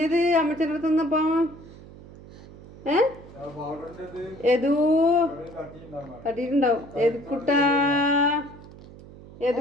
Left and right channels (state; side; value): noise; right; hum, 19 dB below the sound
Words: അമ്മച്ചൻ്റെ അടുത്ത് നിന്നപ്പോ? ഏതൂ തട്ടിയിട്ടുണ്ടാവും. എതുക്കുട്ടാ